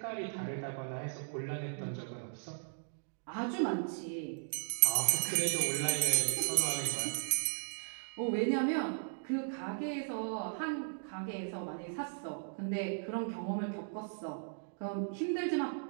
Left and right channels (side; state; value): left; silent; digital silence